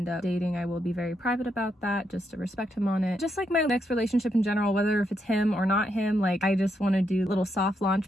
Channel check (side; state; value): both; normal; correlation 0.80